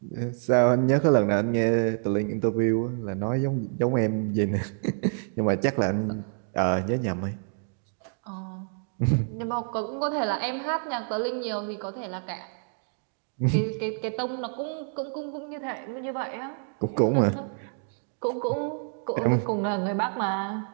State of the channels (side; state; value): left; silent; 55 dB below the other